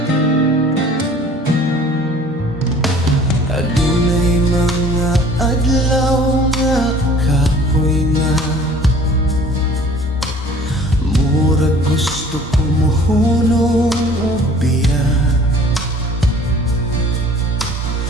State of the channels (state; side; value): normal; both; correlation 0.50